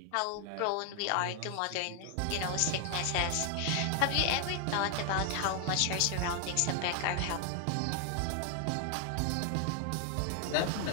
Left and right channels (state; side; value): different; both; correlation 0.00